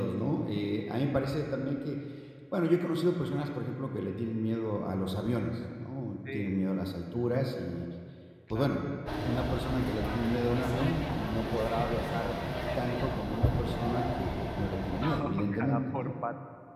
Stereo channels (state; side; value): identical; both; correlation 1.00